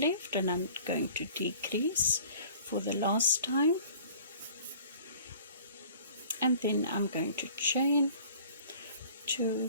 and I'm going to decrease for the last time, and then I'm going to chain 2,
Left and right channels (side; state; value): both; inverted; correlation -0.49